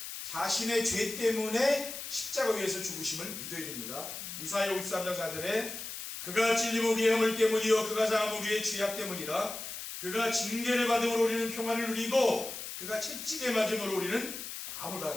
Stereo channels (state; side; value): noise; left; hiss, 8 dB below the sound